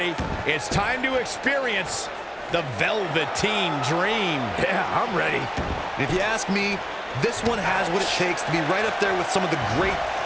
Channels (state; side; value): identical; both; correlation 1.00